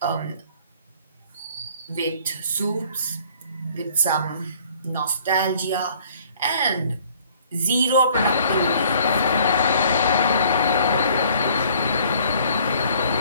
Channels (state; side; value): inverted; both; correlation -0.56